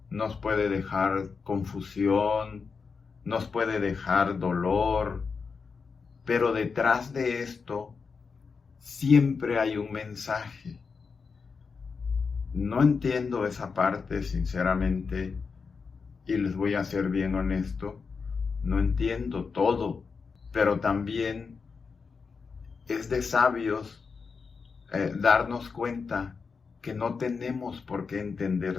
nos puede dejar confusión, nos puede dejar dolor, pero detrás de esto siempre hay un mensaje. No entiendo esa parte, sinceramente, y les voy a ser bien honesto, no entiendo todo, pero también es de sabios darnos cuenta que no tenemos por qué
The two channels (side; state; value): right; quieter; 5.2 dB